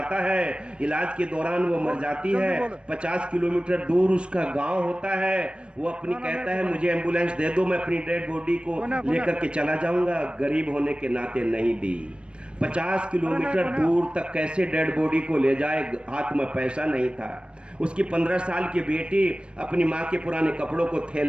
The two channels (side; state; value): left; late; 0.057 ms